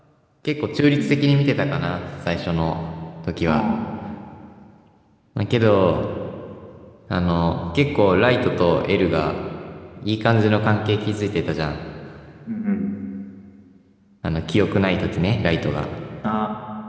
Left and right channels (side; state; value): both; identical; correlation 1.00